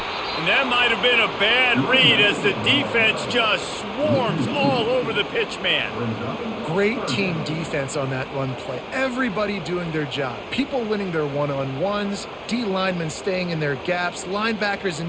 And that might have been a bad read as the defense just swarms all over the pitch man. Great team defense on that run play. Everybody doing their job. People winning their one-on-ones, D linemen staying in their gaps, linebackers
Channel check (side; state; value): both; identical; correlation 1.00